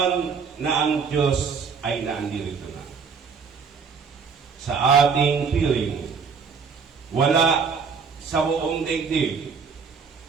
na ang Diyos ay naandirito na. Sa ating piling, wala sa buong daigdig.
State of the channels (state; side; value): quieter; left; 5.7 dB